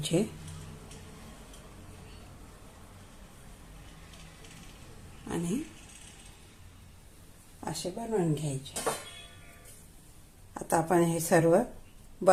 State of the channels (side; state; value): both; identical; correlation 1.00